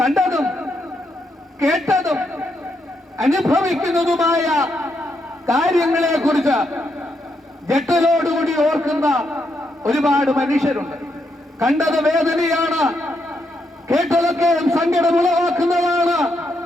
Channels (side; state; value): both; normal; correlation 0.79